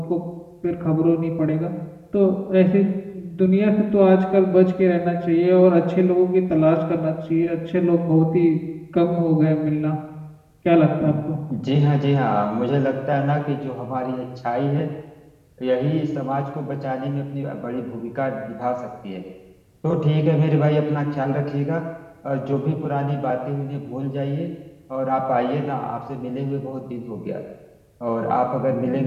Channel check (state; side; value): identical; both; correlation 1.00